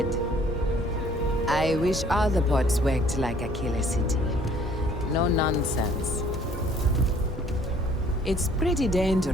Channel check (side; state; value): both; normal; correlation 0.58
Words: I wish all the ports worked like Aquila City. No nonsense. It's pretty